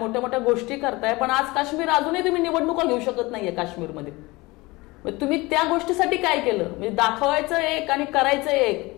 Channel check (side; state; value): right; quieter; 22.5 dB